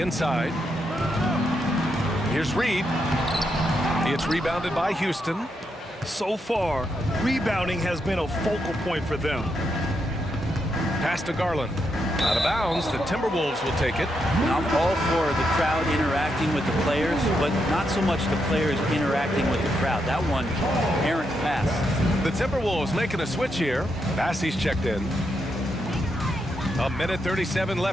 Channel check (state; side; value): normal; both; correlation 0.81